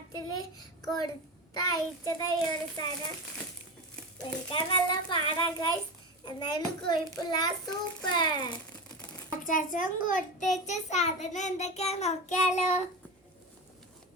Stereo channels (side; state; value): both; normal; correlation 0.23